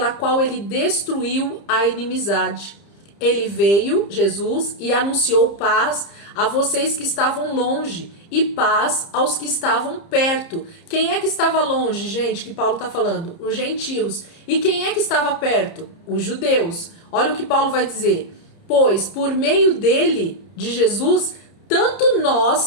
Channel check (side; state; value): right; late; 30 ms